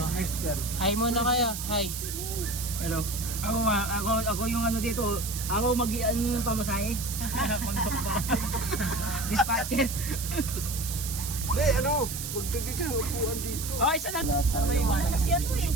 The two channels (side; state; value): right; noise; hiss, 6 dB below the sound